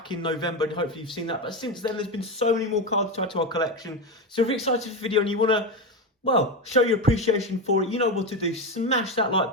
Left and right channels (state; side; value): normal; both; correlation 0.15